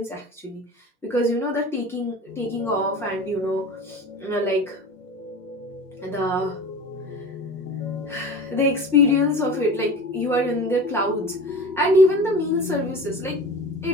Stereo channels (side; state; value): both; normal; correlation 0.35